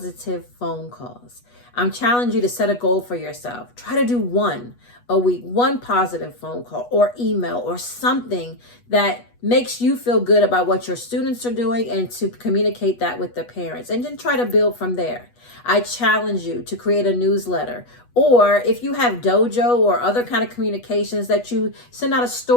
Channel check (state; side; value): late; right; 8.2 ms